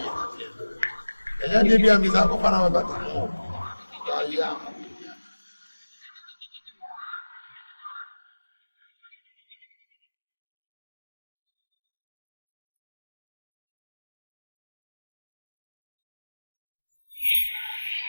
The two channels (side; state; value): both; inverted; correlation -1.00